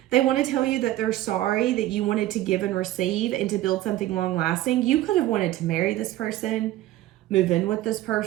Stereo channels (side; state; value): left; quieter; 14.9 dB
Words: They want to tell you that they're sorry that you wanted to give and receive and to build something long lasting. You could have wanted to marry this person, move in with this